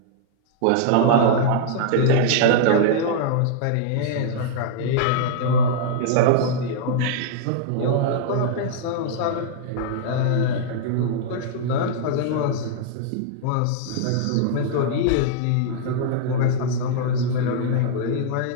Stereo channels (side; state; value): both; different; correlation -0.01